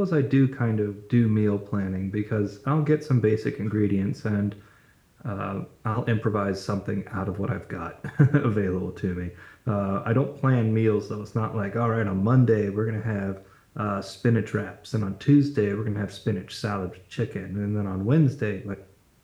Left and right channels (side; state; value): both; identical; correlation 1.00